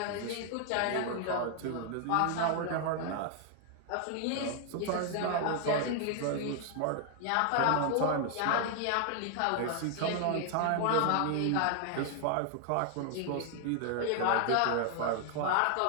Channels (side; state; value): both; different; correlation 0.00